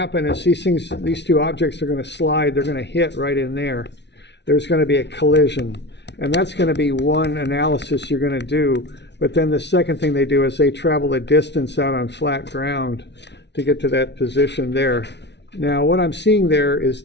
is these two objects are going to slide, they're going to hit right in there. There's going to be a collision, and that's going to be one analysis you're going to do. But then the second thing they do is they travel a distance out on flat ground to get to that position there. Now what I'm seeing there is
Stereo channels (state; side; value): late; right; 0.50 ms